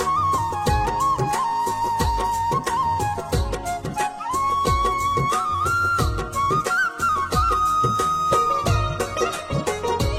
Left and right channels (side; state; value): both; identical; correlation 1.00